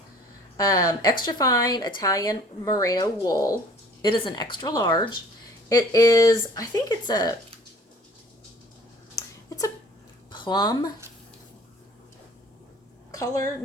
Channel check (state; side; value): normal; both; correlation 0.51